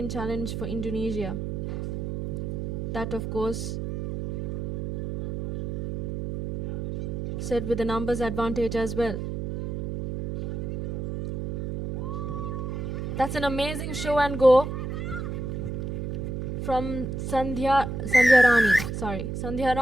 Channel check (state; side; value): noise; right; hum, 4 dB below the sound